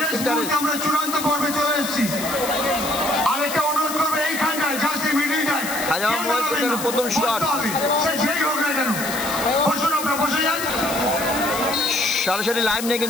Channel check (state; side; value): noise; left; hiss, 7 dB below the sound